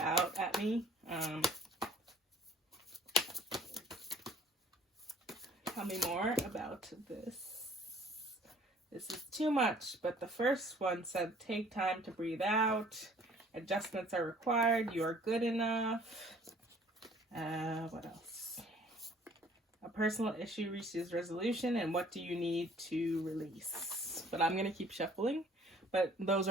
at me. Tell me more about this. This is too much, but the first one said, take time to breathe out. Adjustments are required. You are good enough. What else? A personal issue reaches resolution, and what do you need to release? But I'm going to keep shuffling. But those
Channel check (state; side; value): normal; both; correlation 0.54